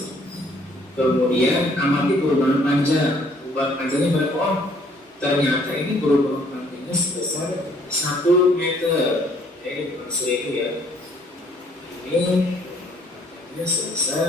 Kemudian amati perubahan panjang. Perubahan panjangnya berapa? Oh, ternyata ini perubahan panjangnya sebesar 1 meter. Ini bukan 1000 ya. Ini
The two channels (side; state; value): both; normal; correlation 0.63